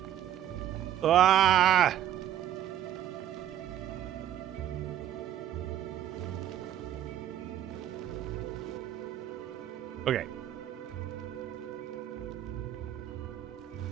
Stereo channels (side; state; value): left; quieter; 11.4 dB